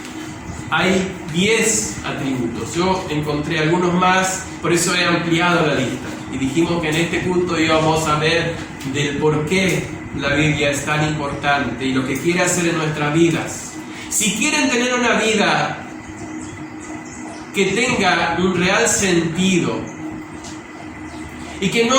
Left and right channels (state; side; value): identical; both; correlation 1.00